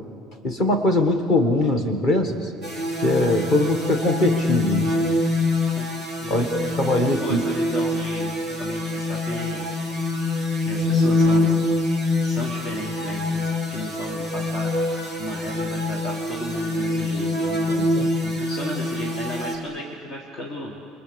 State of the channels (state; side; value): normal; both; correlation 0.60